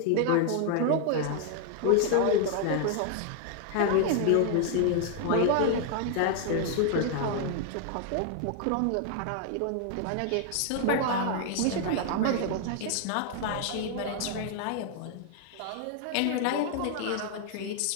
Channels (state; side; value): different; both; correlation 0.00